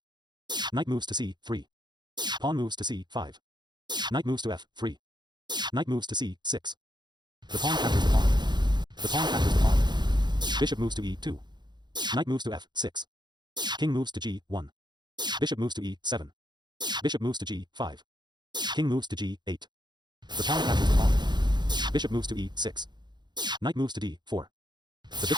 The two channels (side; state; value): left; late; 0.21 ms